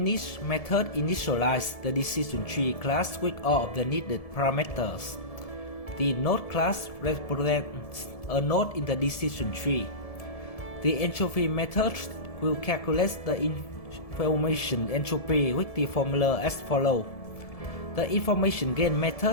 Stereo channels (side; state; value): right; late; 1.7 ms